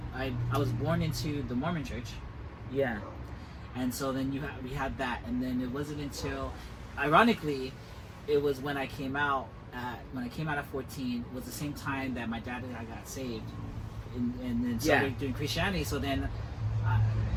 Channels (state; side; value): identical; both; correlation 1.00